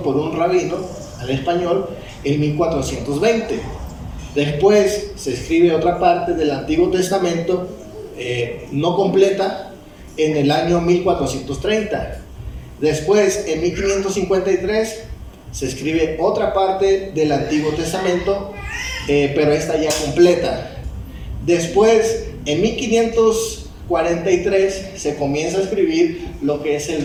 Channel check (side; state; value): both; identical; correlation 1.00